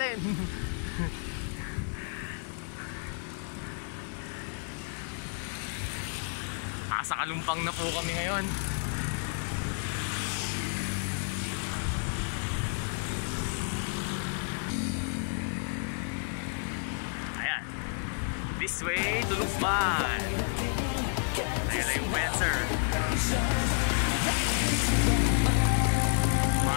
Sa Kalumpang na po kami ngayon. This way to Lukban. Ayan na yung Wenser.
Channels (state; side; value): silent; right; 56 dB below the other